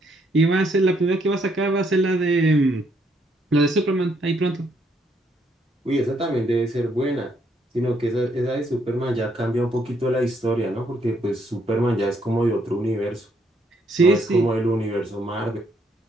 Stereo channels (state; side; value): normal; both; correlation 0.71